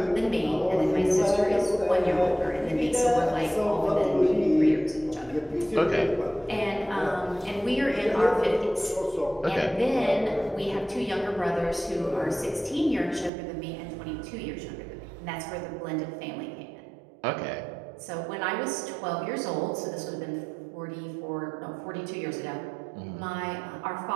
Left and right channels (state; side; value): drops out; left; at 13.3 s